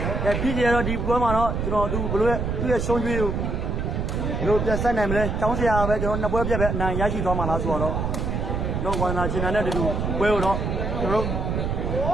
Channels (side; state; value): right; noise; rumble, 1 dB below the sound